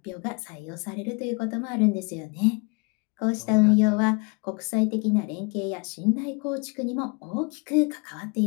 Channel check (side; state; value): right; quieter; 32.3 dB